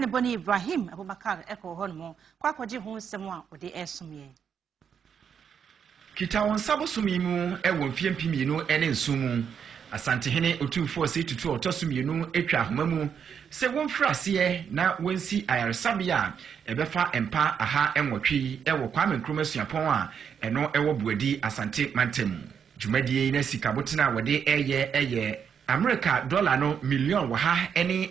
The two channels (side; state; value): left; quieter; 7.4 dB